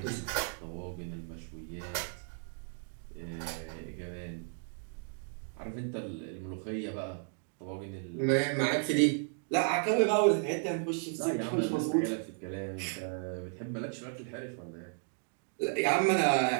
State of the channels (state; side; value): silent; left; 55 dB below the other